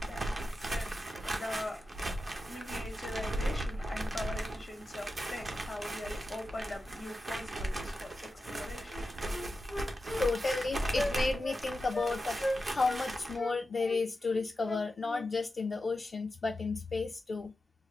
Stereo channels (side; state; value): both; normal; correlation 0.91